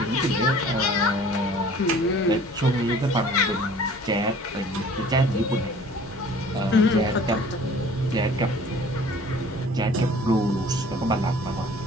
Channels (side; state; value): both; normal; correlation 0.49